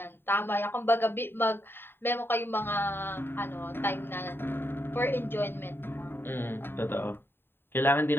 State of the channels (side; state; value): right; late; 0.11 ms